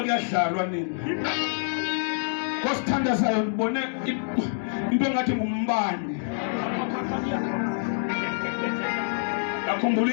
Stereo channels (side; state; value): right; silent; digital silence